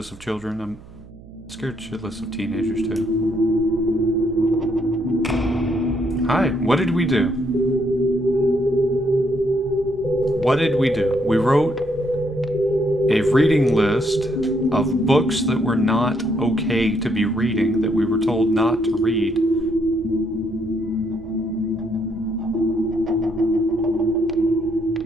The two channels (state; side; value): noise; right; hum, 20 dB below the sound